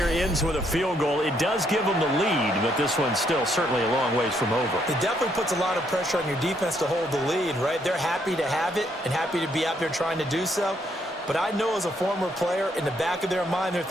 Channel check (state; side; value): normal; both; correlation 0.72